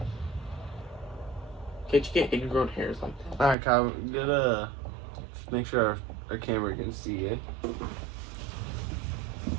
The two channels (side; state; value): left; drops out; at 3.6 s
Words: Can't you get ingrown hairs like that? Alright, Kyle, make sure our camera can see, eh?